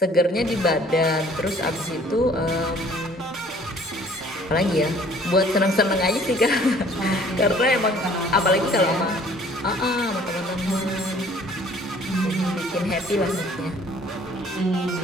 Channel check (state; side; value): normal; both; correlation 0.55